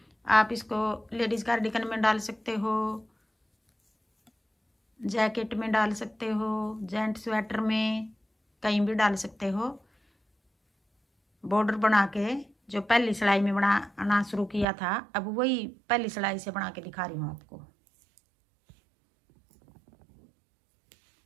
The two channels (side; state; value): left; drops out; at 14.7 s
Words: आप इसको लेडीज कार्डिगन में डाल सकते हो, जैकेट में डाल सकते हो, जेंट स्वेटर में, कहीं भी डाल सकते हो। बॉर्डर बना के जो पहली सिलाई में बनाना शुरू किया था, अब वही पहली सिलाई से बना के दिखा रही हूँ आपको।